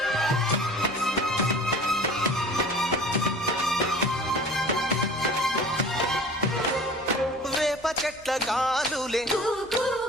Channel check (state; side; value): noise; left; hum, 26 dB below the sound